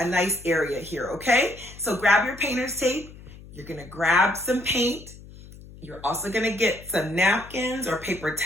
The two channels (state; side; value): noise; left; hum, 18 dB below the sound